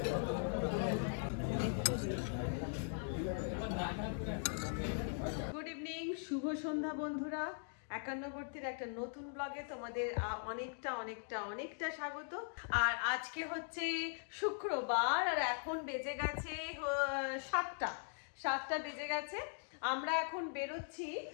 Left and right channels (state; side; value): silent; right; digital silence